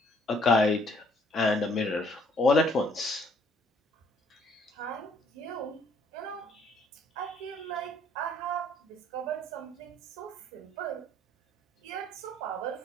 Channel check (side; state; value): both; normal; correlation 0.63